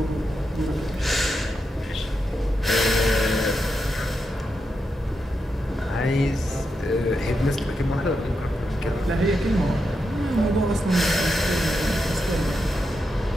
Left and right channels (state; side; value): normal; both; correlation 0.86